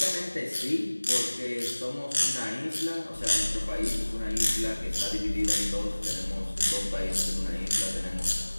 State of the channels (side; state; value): both; inverted; correlation -1.00